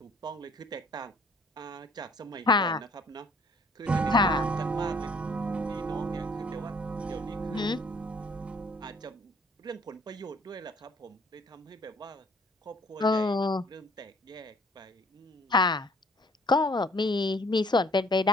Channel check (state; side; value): normal; both; correlation 0.58